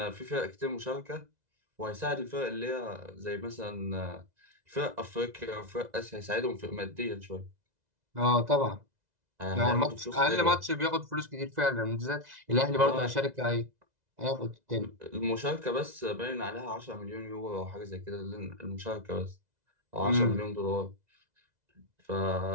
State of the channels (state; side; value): late; left; 2.0 ms